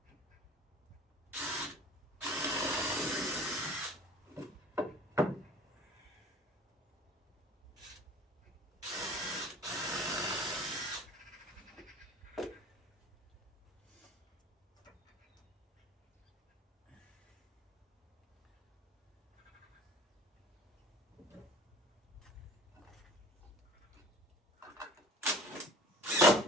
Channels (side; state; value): both; normal; correlation 0.46